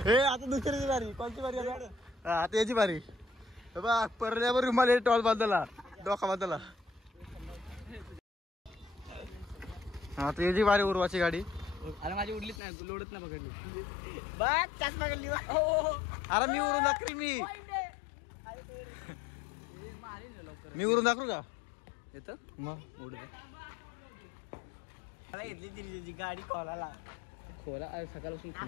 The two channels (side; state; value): right; drops out; at 12.6 s